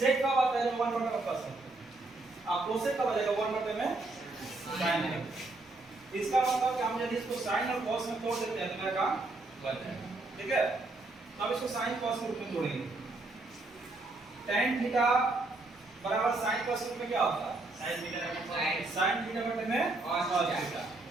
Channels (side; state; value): left; quieter; 3.1 dB